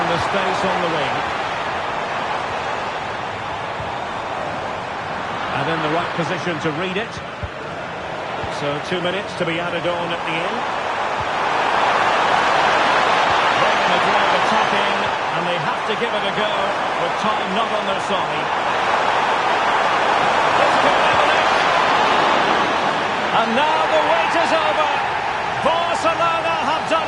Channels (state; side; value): identical; both; correlation 1.00